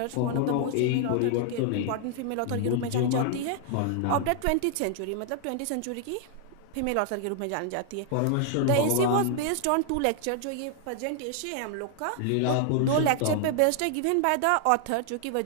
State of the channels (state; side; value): different; both; correlation 0.00